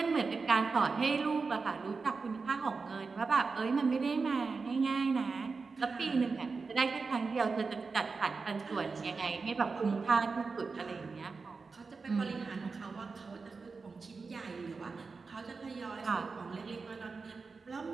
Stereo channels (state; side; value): quieter; left; 4.5 dB